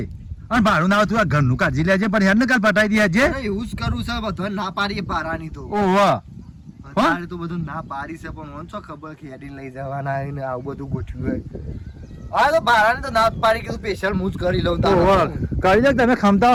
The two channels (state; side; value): identical; both; correlation 1.00